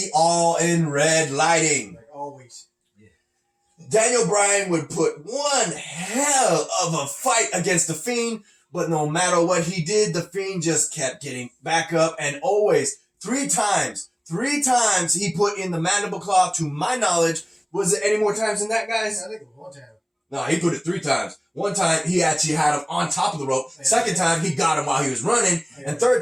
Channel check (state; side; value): identical; both; correlation 1.00